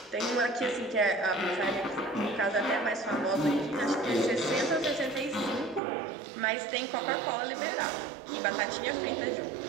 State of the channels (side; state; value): left; drops out; at 5.8 s